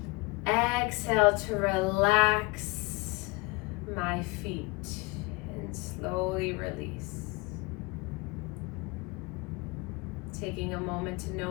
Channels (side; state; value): right; quieter; 26.2 dB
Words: Exhale to relax my feet and slowly release. Taking a moment to